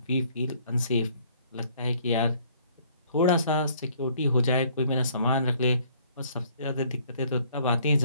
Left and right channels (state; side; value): inverted; both; correlation -0.60